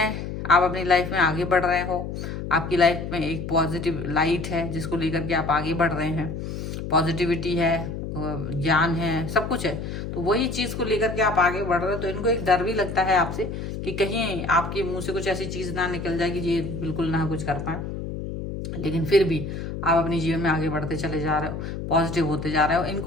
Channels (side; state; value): left; noise; hum, 6 dB below the sound